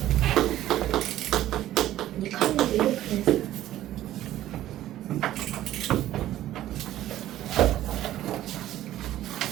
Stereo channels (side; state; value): left; quieter; 13.6 dB